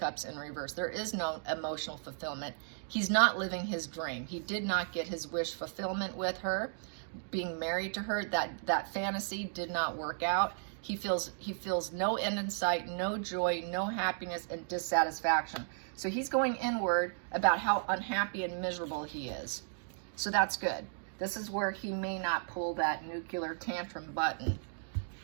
in reverse. There is no emotional fulfillment. He's not living his dream. He did not get his wish fulfillment with her. Being married to her, that fantasy did not work out. He feels no end in sight, no joy, no happiness, and dissatisfaction. So he's going inward about how unhappy and miserable he is. So that's good. This is where he may not pull that nuclear tantrum button.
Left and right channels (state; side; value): silent; left; digital silence